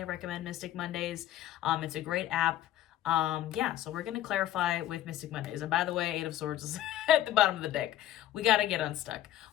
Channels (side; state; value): right; quieter; 12.9 dB